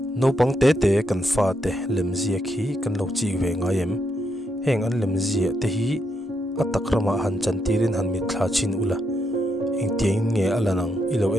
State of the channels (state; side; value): normal; both; correlation 0.80